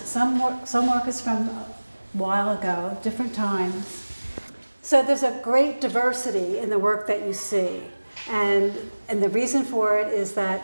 work is from a while ago, different times. So there's a great diversity in the work that you see, and the reason for it is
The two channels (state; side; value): inverted; both; correlation -1.00